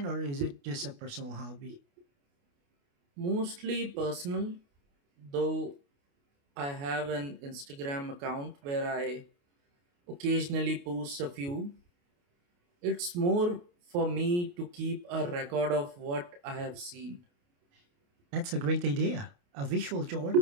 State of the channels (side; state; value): left; late; 28 ms